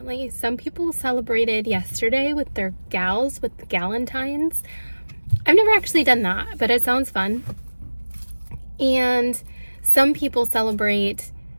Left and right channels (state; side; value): inverted; both; correlation -1.00